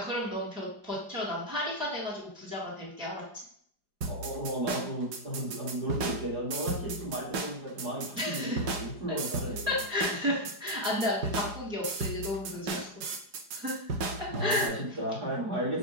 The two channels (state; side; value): late; left; 4.9 ms